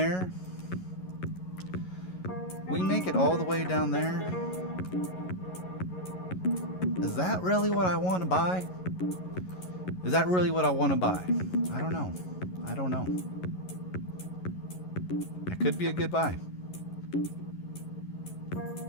We make it all the way down there. Is that really what I want to buy? Is that really what I want to buy? I don't know. I don't know. It could be a good buy.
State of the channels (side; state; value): right; late; 11 ms